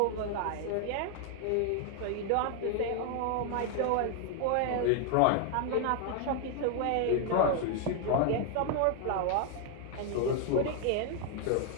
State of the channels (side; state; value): both; different; correlation 0.00